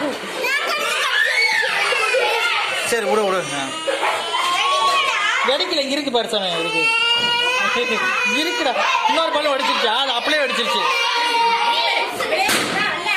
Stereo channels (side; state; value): both; identical; correlation 1.00